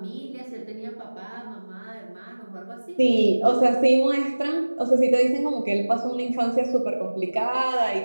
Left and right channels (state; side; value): inverted; both; correlation -1.00